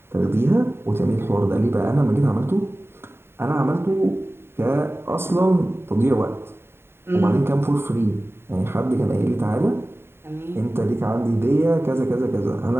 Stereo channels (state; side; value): late; left; 0.11 ms